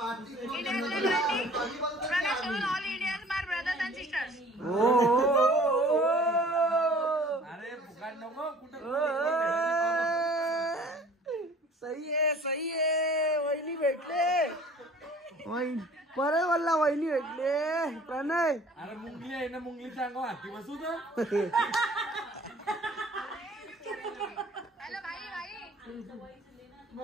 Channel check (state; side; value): normal; both; correlation 0.50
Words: Indian Liberty. Pranay shows all Indians, my brothers and sisters. अरे फुकाट नको कुठं. सही आहे वहिनी भेटले. परत बोलला वहिनी भेटले प्रणय. अरे मुंगली आहे ना मुंगलीच्या अंगावर हाती बसू तर. Hello, bhai.